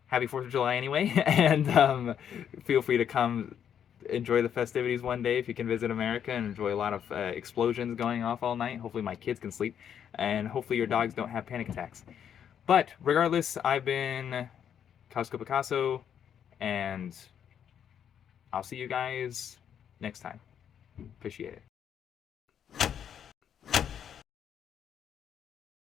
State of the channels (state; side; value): quieter; right; 8.8 dB